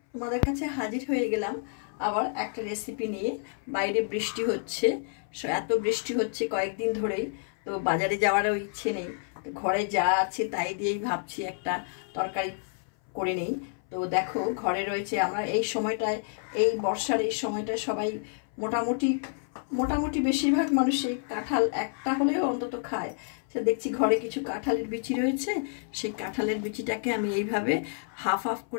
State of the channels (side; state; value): right; silent; 59 dB below the other